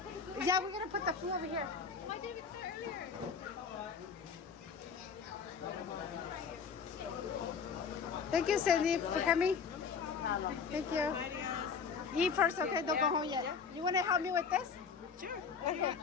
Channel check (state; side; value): quieter; right; 5.9 dB